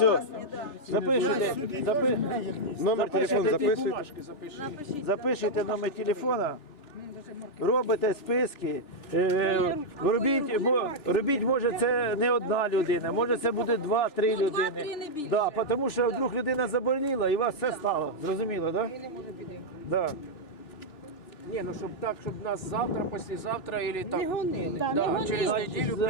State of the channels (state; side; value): late; right; 3.4 ms